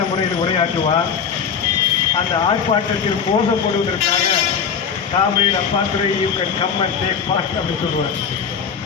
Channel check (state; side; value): quieter; right; 6.8 dB